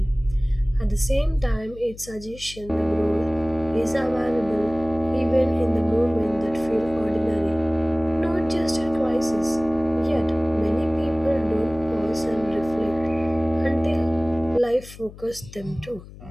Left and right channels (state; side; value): noise; left; hum, 17 dB below the sound